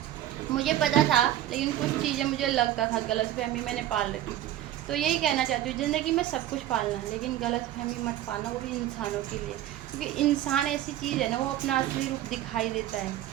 मुझे पता था लेकिन कुछ चीज़ें मुझे लगता था गलतफहमी मैंने पाल रखी थी। तो यही कहना चाहती हूँ, ज़िंदगी में सब कुछ पालना है, लेकिन गलतफहमी मत पालना, वो भी इंसानों के लिए। क्योंकि इंसान ऐसी चीज़ है ना, वो अपना असली रूप दिखाई देता है।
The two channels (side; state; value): left; quieter; 12.8 dB